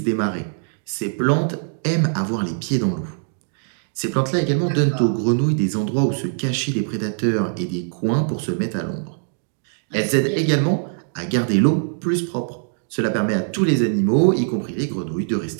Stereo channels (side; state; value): left; silent; digital silence